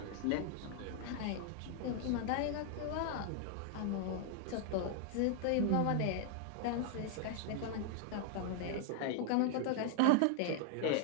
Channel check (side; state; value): both; different; correlation 0.00